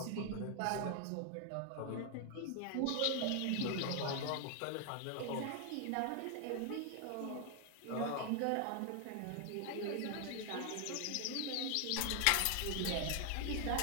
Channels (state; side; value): different; both; correlation 0.00